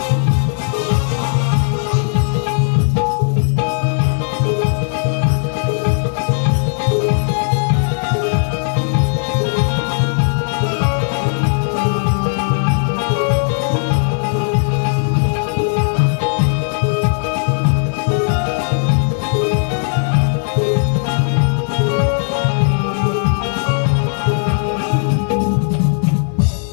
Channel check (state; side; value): silent; right; 68 dB below the other